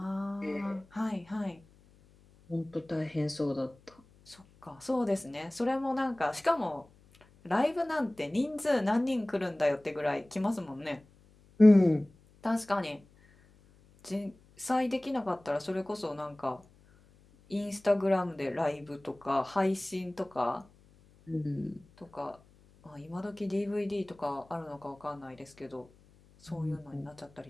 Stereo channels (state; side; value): noise; left; hum, 28 dB below the sound